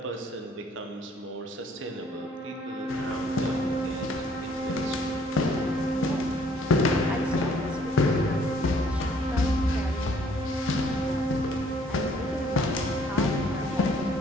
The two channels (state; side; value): normal; both; correlation 0.61